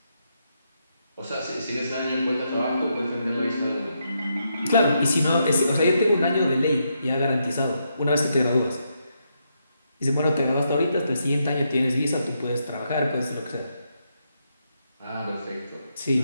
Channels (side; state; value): both; inverted; correlation -0.80